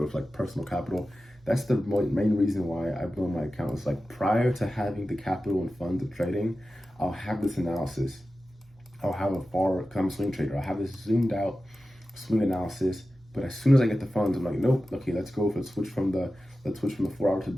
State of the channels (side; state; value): both; normal; correlation 0.94